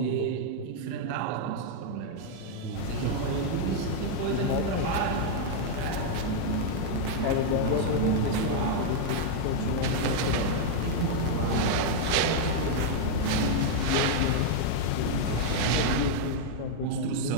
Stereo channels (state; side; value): different; both; correlation -0.01